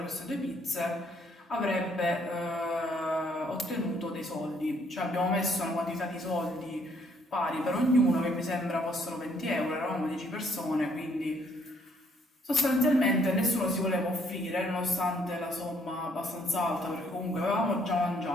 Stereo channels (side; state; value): both; normal; correlation 0.67